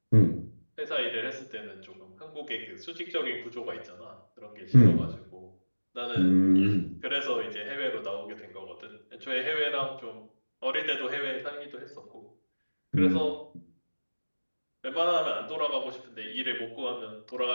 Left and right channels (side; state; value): both; inverted; correlation -1.00